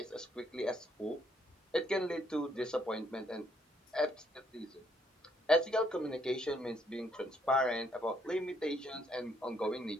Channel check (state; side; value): normal; both; correlation 0.71